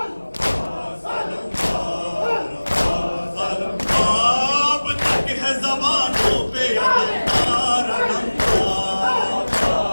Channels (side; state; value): both; inverted; correlation -1.00